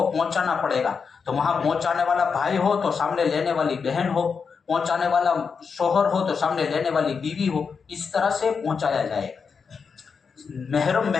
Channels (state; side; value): quieter; right; 5.7 dB